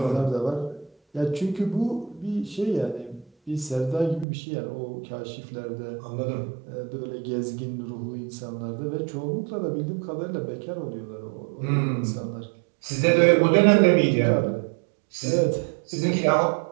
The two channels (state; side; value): drops out; left; at 4.2 s